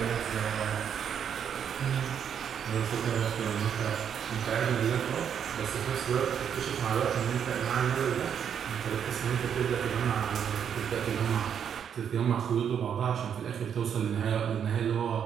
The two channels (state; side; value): quieter; left; 8.2 dB